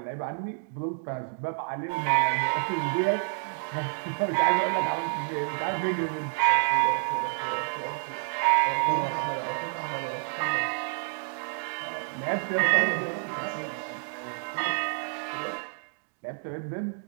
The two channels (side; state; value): left; silent; 59 dB below the other